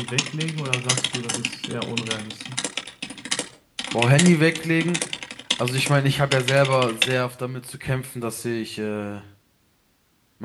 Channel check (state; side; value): identical; both; correlation 1.00